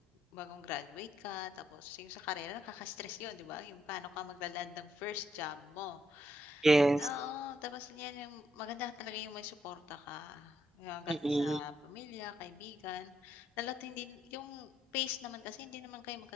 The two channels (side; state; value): both; normal; correlation 0.76